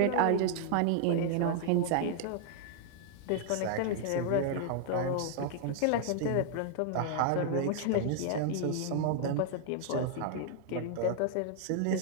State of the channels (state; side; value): different; both; correlation -0.01